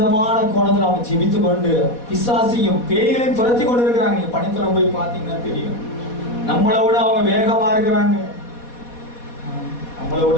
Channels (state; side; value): late; right; 4.1 ms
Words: கோணத்தில் அவங்க ஜெபித்து கொண்டு பிசாசையும் பேய்களையும் துரத்தி கொண்டு இருக்கிறாங்க. நீங்க பணித்தலம் போய் பார்த்தீங்கன்னா தெரியும். நம்மளை விட அவங்க வேகமா இருக்கிறாங்க, நம்மளை